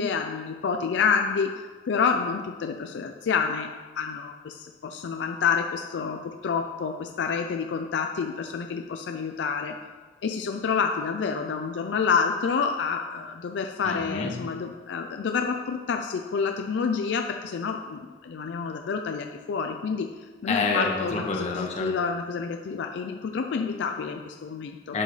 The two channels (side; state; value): right; quieter; 5.3 dB